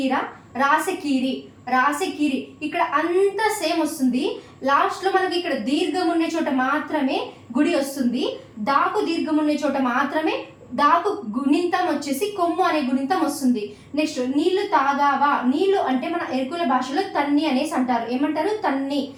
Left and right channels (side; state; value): both; identical; correlation 1.00